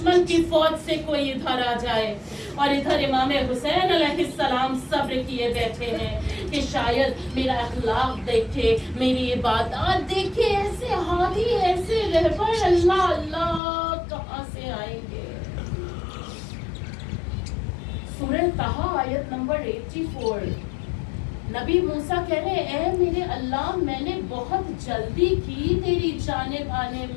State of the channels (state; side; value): drops out; right; at 13.6 s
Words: کی فوج سے کوئی ادھر آ جائے. اور ادھر امام حسین علیہ السلام صبر کیے بیٹھے ہیں کہ شاید میرا اخلاق دیکھے، میری عبادات دیکھے، ایسے حالی، ایسے رہبر اللہ اللہ کہاں سے آئیں گے. سورہ طٰہٰ آیت نمبر 84. نبی موسیٰ کہہ رہے اے میرے اللہ، میں نے بہت جلدی کی تیری جانب آنے